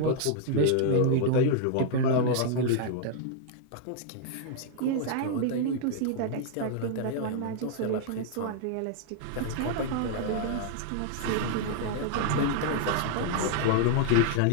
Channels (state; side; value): different; both; correlation -0.01